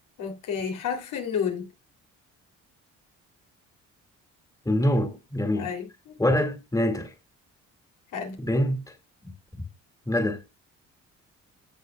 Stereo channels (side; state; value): both; normal; correlation 0.70